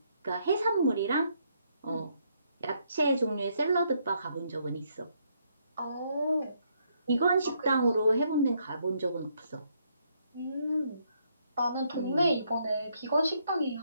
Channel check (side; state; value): both; inverted; correlation -0.73